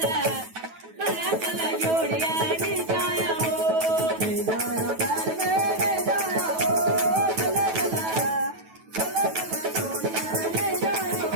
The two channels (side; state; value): left; late; 9.2 ms